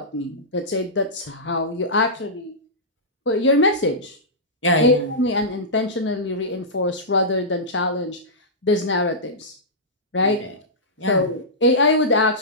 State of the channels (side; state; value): both; normal; correlation -0.15